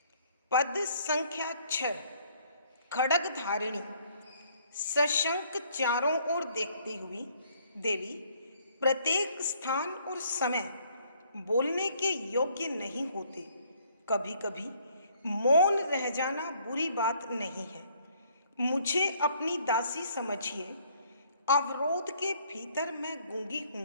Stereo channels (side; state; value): both; inverted; correlation -0.64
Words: पद संख्या 6, खड्ग धारिणी। सशंक चारों ओर देखती हुई देवी प्रत्येक स्थान और समय बोलने के योग्य नहीं होते। कभी कभी मौन रह जाना बुरी बात नहीं है। मुझे अपनी दासी समझिए। अवरोध के भीतर मैं गूंगी